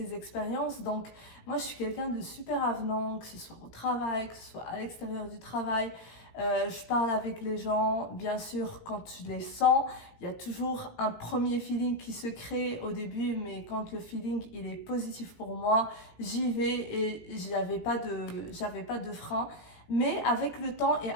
expériences. Donc moi, je suis quelqu'un de super avenant, que ce soit au travail, que ce soit à l'extérieur du travail. Je parle avec les gens, bien sûr, quand je les sens. Il y a toujours un premier feeling qui se crée au début, mais quand le feeling il est positif pour moi, j'y vais et j'avais pas de frein. Mais avec le temps et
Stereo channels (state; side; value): late; right; 17 ms